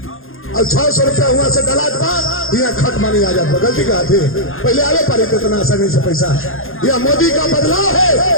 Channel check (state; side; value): late; right; 0.60 ms